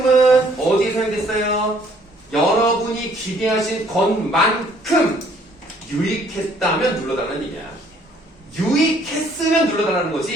어디에 사용됐어요? 여러분이 기대하신 것만큼 유익했다면 눌러달라는 얘기야. 유익했으면 눌러달라는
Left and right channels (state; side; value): normal; both; correlation 0.62